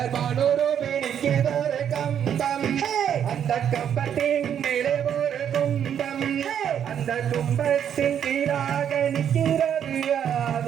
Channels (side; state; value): left; quieter; 9.0 dB